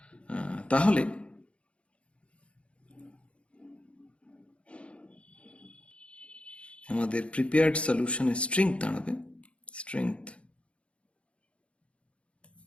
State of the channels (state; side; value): late; right; 0.060 ms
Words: তাহলে আমাদের প্রিপেয়ার্ড সলিউশনের স্ট্রেংথ দাঁড়াবে strength